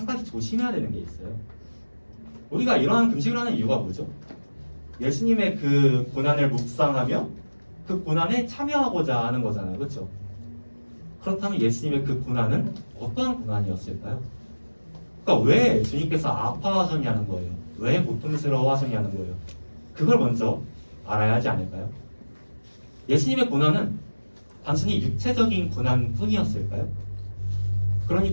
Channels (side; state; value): both; inverted; correlation -1.00